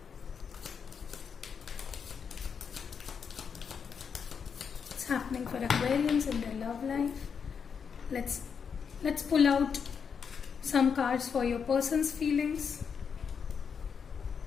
What's happening for Aquarians in their love life? Let's pull out some cards for your person's feelings.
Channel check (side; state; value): right; quieter; 6.6 dB